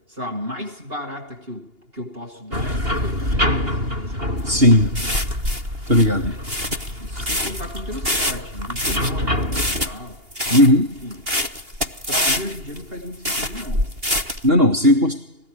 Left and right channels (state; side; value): late; left; 2.8 ms